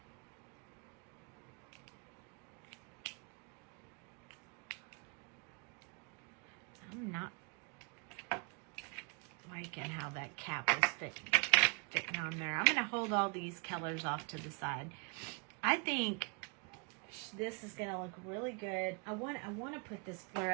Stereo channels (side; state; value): left; quieter; 34.9 dB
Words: I'm not liking how that cap is fitting on there. I'm going to hold all these colors off to the side. I think this is going to look really good. I want to put this